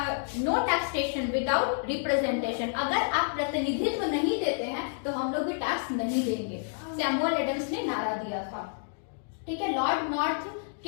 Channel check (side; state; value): right; silent; digital silence